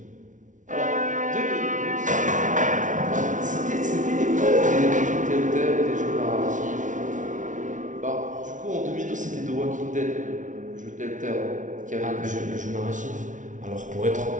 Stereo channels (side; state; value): left; late; 0.37 ms